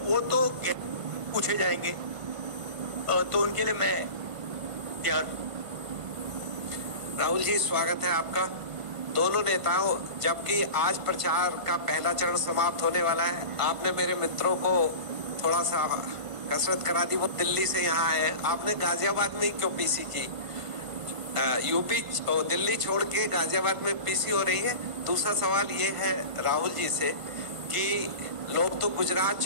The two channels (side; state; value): left; late; 1.5 ms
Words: वो तो पूछे जाएंगे, तो उनके लिए मैं तैयार हूं. राहुल जी, स्वागत है आपका. दोनों नेताओं, जबकि आज प्रचार का पहला चरण समाप्त होने वाला है, आपने मेरे मित्रों को थोड़ा सा कसरत करा दी. वो दिल्ली से यहाँ आए, आपने गाजियाबाद में ही क्यों पीसी की? यूपी दिल्ली छोड़ के गाजियाबाद में पीसी हो रही है. दूसरा सवाल ये है राहुल जी से कि लोग तो गुजरात